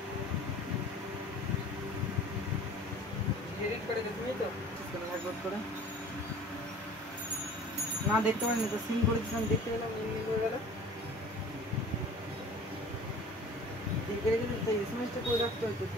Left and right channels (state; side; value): normal; both; correlation 0.45